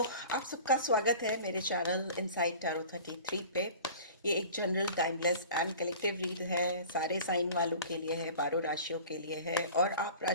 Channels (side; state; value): both; inverted; correlation -0.42